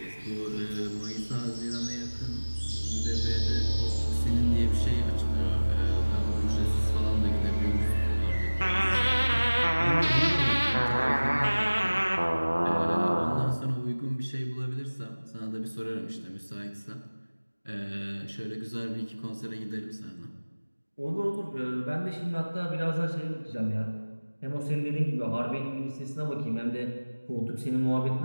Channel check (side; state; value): both; inverted; correlation -1.00